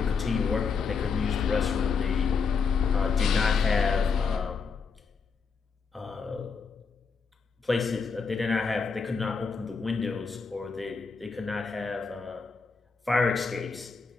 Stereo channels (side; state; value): right; quieter; 5.2 dB